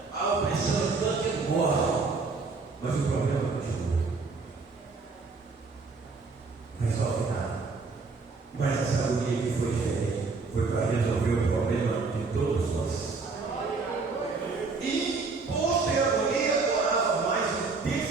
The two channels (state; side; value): quieter; left; 4.2 dB